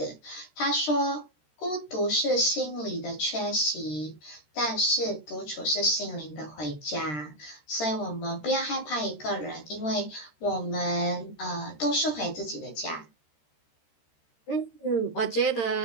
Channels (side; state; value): right; late; 13 ms